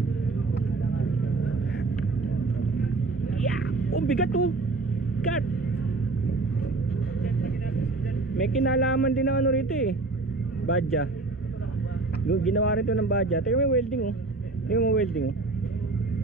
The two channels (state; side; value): quieter; left; 3.4 dB